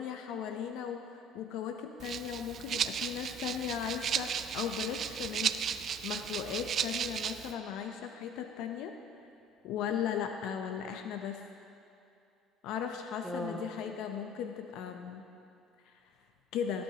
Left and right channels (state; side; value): normal; both; correlation 0.49